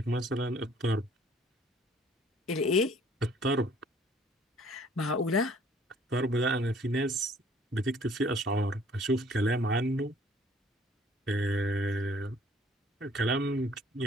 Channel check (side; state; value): both; normal; correlation 0.57